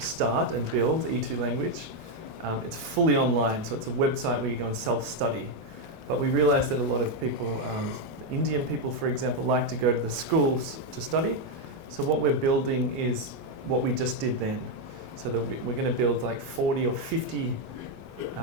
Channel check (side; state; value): both; normal; correlation 0.03